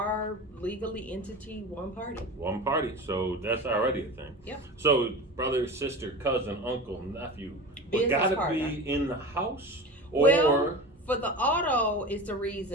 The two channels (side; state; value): both; normal; correlation 0.30